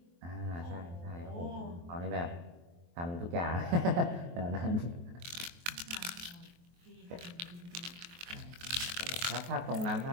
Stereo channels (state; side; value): late; left; 23 ms